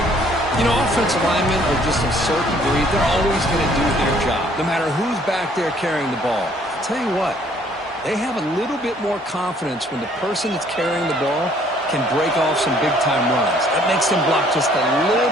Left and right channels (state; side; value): normal; both; correlation 0.61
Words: You know, offensive linemen are just a certain breed. They're always going to do their job, no matter who's back there carrying the ball. I'll tell you what, they have a little bit more confidence when the person that's carrying the ball can break off some big-time runs. That makes them block just a